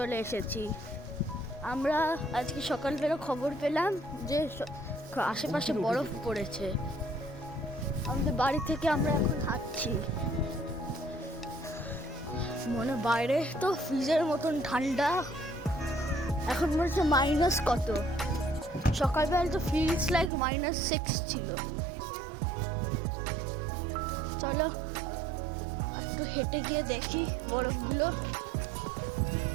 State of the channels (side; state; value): left; drops out; at 20.3 s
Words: এসেছি। আমরা আজকে সকালবেলা খবর পেলাম যে আশেপাশে বরফ পড়েছে। আমাদের বাড়ি থেকে আমরা এখন হাঁটছি, মনে বাইরে তো ফ্রিজের মতন ঠান্ডা। এখন মনে হচ্ছে মাইনাস কত, সকালবেলা তো ফিলস লাইক -6 ছিল। চলো একটু হেঁটে গিয়ে দেখি বরফগুলো।